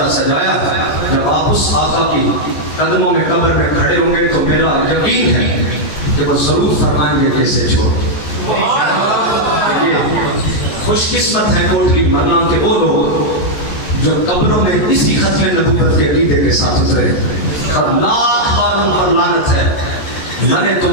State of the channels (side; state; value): right; late; 14 ms